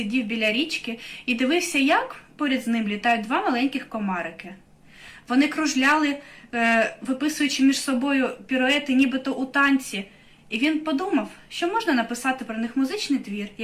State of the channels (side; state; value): both; identical; correlation 1.00